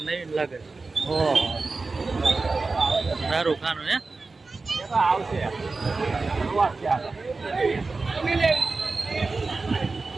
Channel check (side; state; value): left; quieter; 3.8 dB